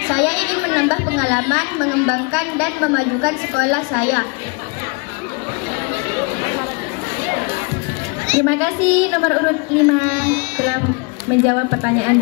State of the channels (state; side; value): quieter; right; 30.3 dB